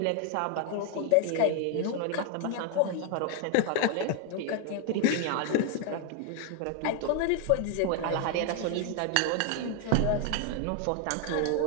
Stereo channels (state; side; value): different; both; correlation 0.01